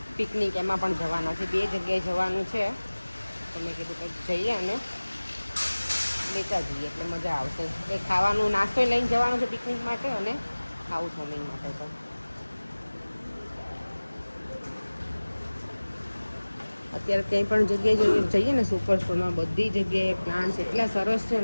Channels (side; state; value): both; inverted; correlation -1.00